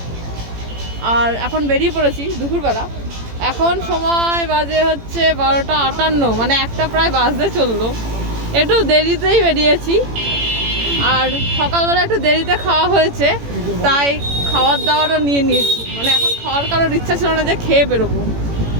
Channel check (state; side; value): late; left; 18 ms